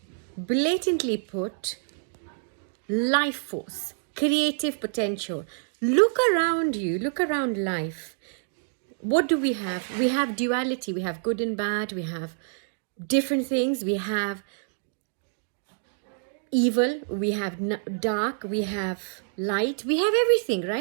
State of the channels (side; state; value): left; silent; digital silence